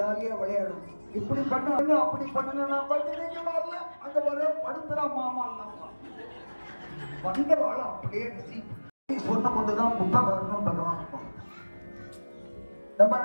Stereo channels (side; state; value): both; inverted; correlation -1.00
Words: விளையாடும். இப்படி பண்ண அப்படி பண்ணுங்க, அங்க வர படுத்துறா மாமா வந்த வாழ அப்படியே சொன்ன கொண்டுதான் புத்தகம் பகவான். நம்ம